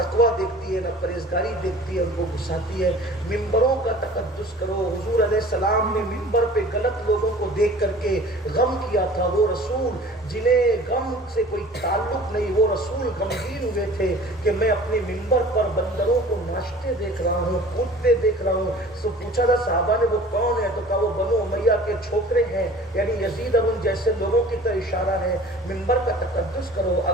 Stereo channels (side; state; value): both; normal; correlation 0.45